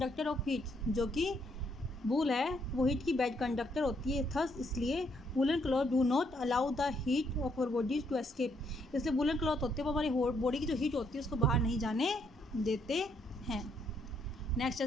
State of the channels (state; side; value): normal; both; correlation 0.72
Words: of heat. जो कि वूल है वो हीट की बेड कंडक्टर होती है। थस इसलिए woollen cloth do not allow the heat of our bodies to escape. इसलिए वूलन क्लॉथ होते हैं वो हमारी बॉडी की जो हीट होती है उसको बाहर नहीं जाने देते हैं। नेक्स्ट